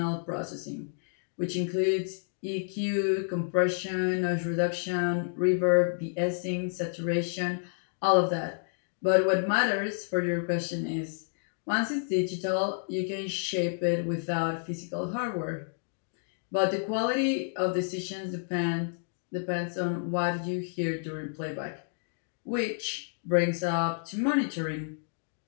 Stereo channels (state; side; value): silent; right; digital silence